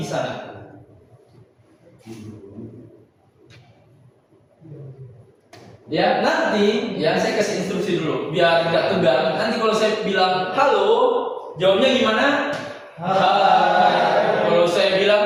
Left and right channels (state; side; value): identical; both; correlation 1.00